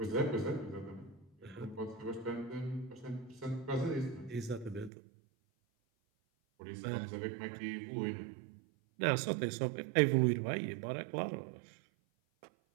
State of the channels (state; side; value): drops out; left; at 4.9 s